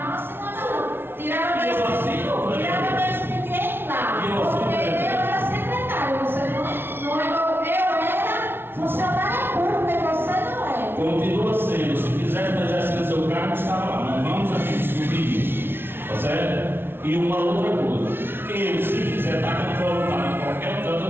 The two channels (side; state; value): left; late; 0.11 ms